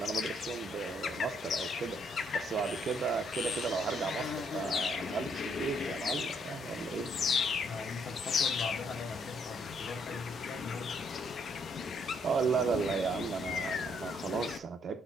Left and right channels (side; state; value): both; normal; correlation 0.70